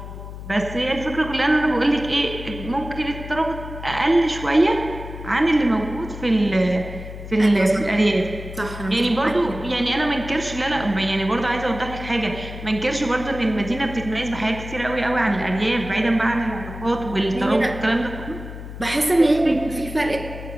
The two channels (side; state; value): left; noise; hum, 11 dB below the sound